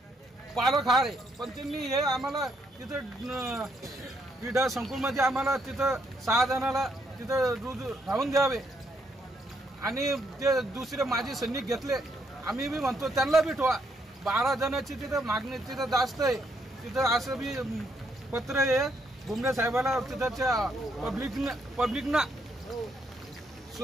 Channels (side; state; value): both; normal; correlation 0.74